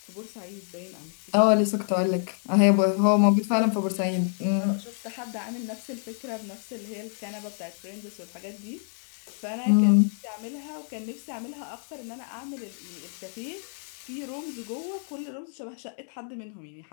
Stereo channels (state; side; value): silent; right; 59 dB below the other